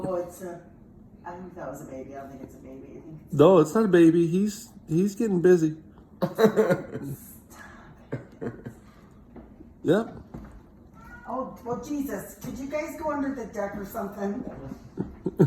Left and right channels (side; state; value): both; identical; correlation 1.00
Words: it's a... I think that was a baby. I don't think it's a baby. I think it's... No, it's not a baby. He's getting busy. Yep. Oh, well, Jesus. Could you guys go under the deck or something?